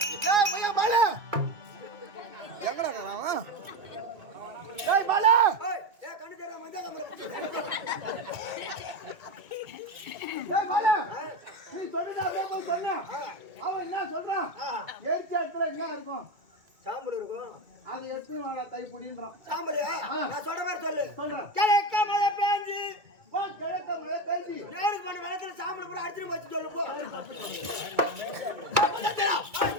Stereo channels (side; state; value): left; late; 2.2 ms